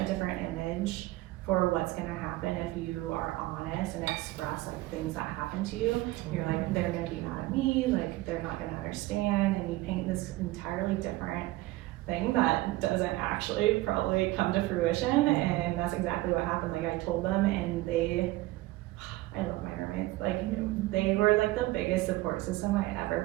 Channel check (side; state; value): left; quieter; 18.4 dB